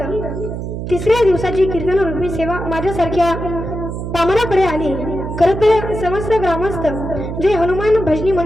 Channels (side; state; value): right; noise; hum, 6 dB below the sound